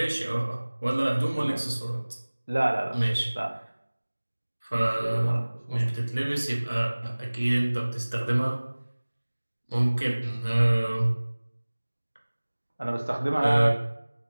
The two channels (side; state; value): both; inverted; correlation -1.00